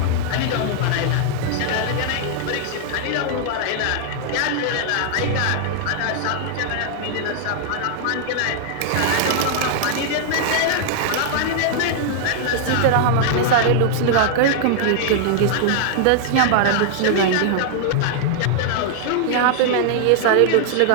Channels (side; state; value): both; different; correlation -0.01